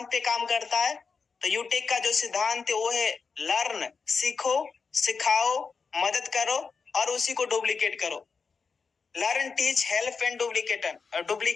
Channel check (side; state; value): right; quieter; 5.2 dB